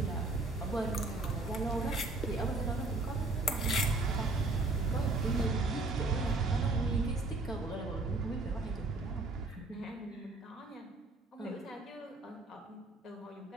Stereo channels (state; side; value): quieter; left; 3.1 dB